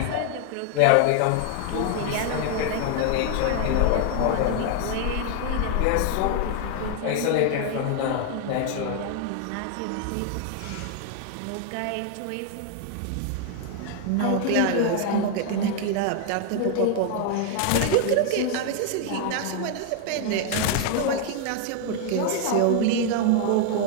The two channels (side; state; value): both; different; correlation 0.00